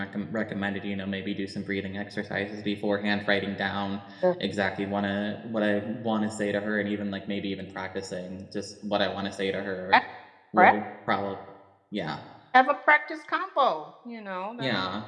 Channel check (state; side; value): identical; both; correlation 1.00